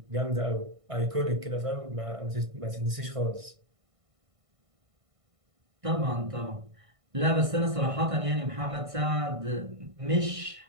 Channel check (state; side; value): late; left; 1.5 ms